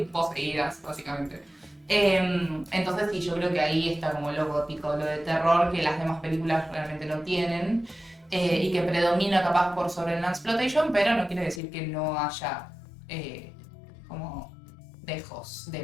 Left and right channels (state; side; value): drops out; right; at 11.6 s